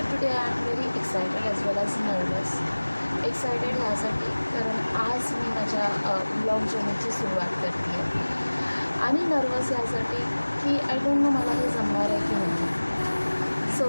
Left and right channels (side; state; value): both; inverted; correlation -1.00